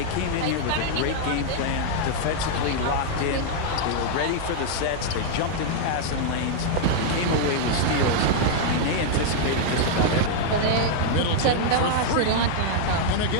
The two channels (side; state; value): both; different; correlation -0.01